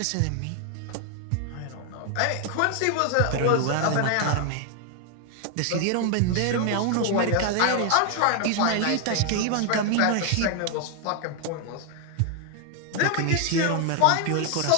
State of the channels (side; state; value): both; different; correlation 0.00